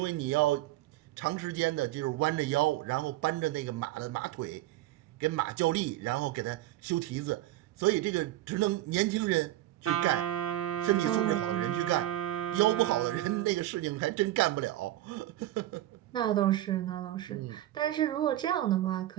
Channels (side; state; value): left; quieter; 14.8 dB